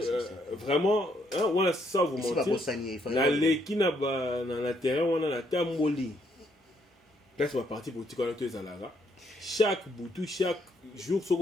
Vraiment on a ça vous mentir na leki na ba na terrain wana na tamboli place ba parti politique wana to ezalaka chaque boutou chaque jour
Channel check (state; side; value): normal; both; correlation 0.72